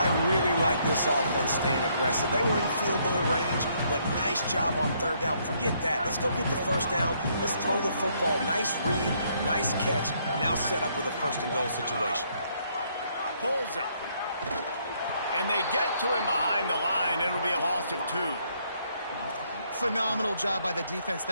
really like this offense staying aggressive. They were in field goal range, but nice job on third down. Forget that. Let's go get the first down. Let's throw the football. Nice read, nice catch. Now set up with a first and goal situation. Pulls it. And they get to him behind the line. It'll be a loss of 2. Phenomenal job by the defense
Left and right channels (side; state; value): both; inverted; correlation -0.70